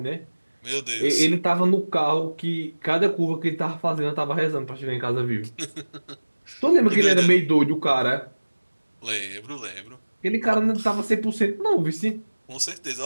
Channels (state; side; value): inverted; both; correlation -1.00